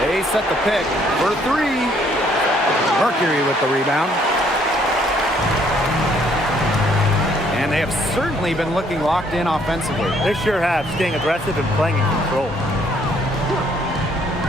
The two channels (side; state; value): both; normal; correlation 0.65